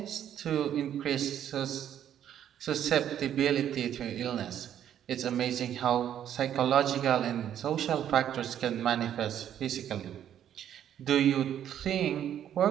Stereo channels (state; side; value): quieter; left; 10.2 dB